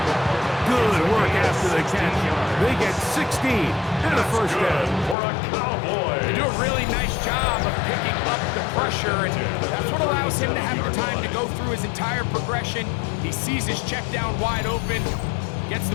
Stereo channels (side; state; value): right; drops out; at 5.2 s